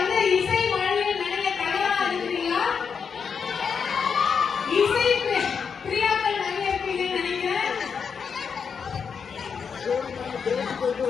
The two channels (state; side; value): quieter; right; 6.3 dB